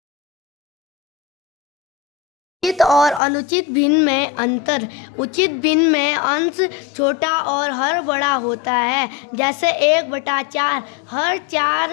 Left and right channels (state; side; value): drops out; right; at 3.2 s